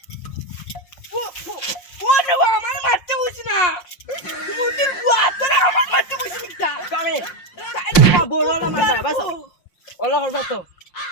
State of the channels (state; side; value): late; right; 5.6 ms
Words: ও না আমার মারতে বসি না মুদির গুয়াতরা আমার মারতে বসি মিটা কামে বল ওলা মারবা বাজাও ওলা করবা তো